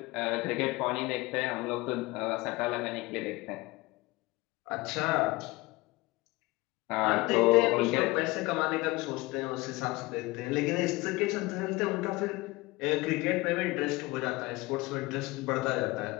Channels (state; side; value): quieter; right; 21.6 dB